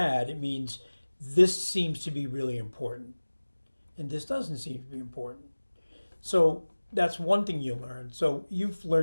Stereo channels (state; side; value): inverted; both; correlation -1.00